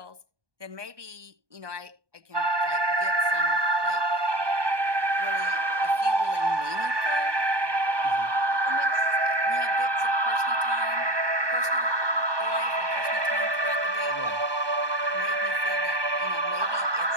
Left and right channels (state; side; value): late; left; 1.2 ms